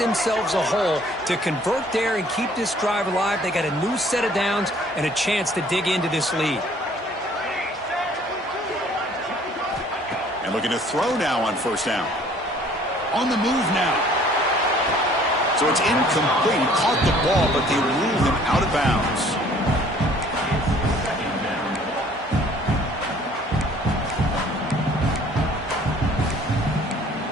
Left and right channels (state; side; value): normal; both; correlation 0.56